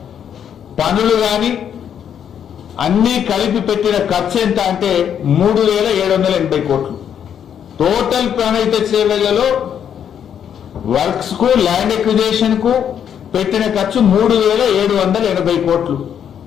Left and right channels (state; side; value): quieter; right; 8.7 dB